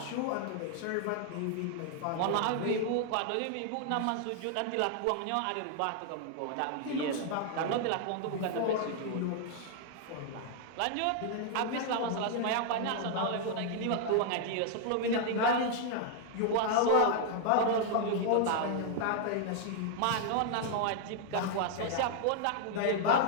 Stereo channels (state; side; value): different; both; correlation 0.00